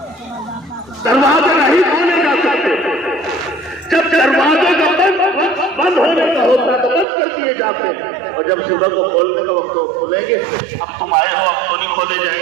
دروازے نہیں کھولے جا سکتے، جب دروازے کا بند ہونے کا ہوتا تو بند کر دیے جاتے ہیں، اور جب صبح کو کھولنے کا وقت کھولیں گے، اب تم آئے ہو اب تو نہیں کھولے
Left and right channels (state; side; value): drops out; left; at 7.1 s